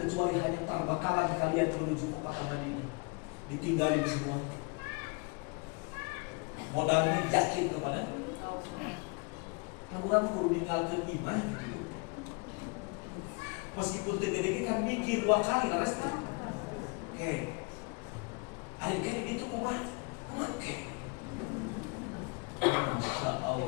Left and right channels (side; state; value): right; quieter; 31.6 dB